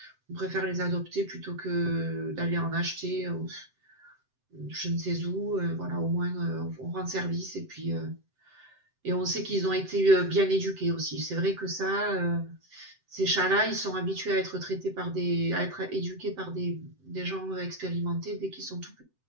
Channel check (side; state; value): left; late; 7.8 ms